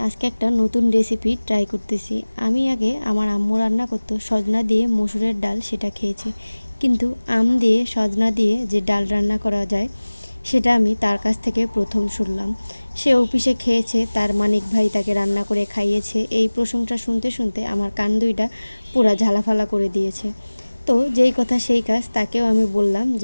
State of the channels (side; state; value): both; inverted; correlation -1.00